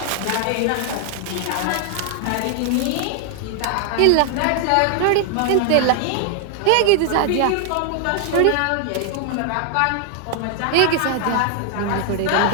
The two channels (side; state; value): both; different; correlation 0.00